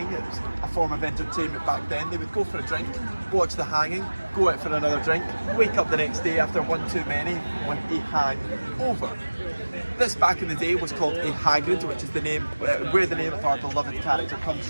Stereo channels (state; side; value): inverted; both; correlation -1.00